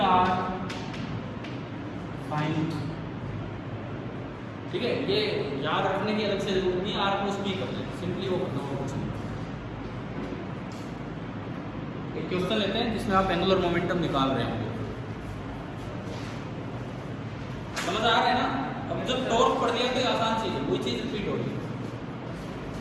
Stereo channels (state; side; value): identical; both; correlation 1.00